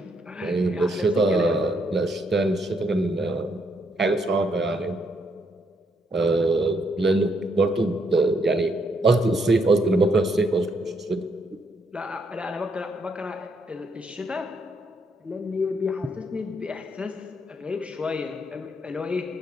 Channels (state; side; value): normal; both; correlation 0.74